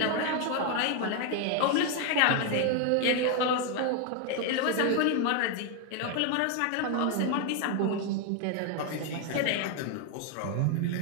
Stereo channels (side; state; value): both; different; correlation 0.01